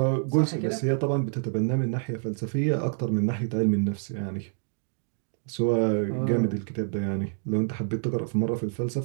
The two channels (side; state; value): left; silent; digital silence